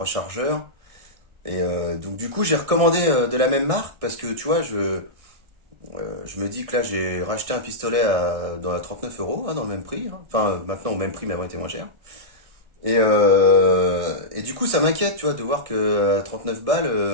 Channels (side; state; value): left; late; 1.6 ms